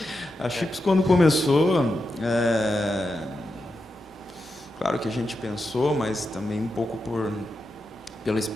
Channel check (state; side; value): normal; both; correlation 0.88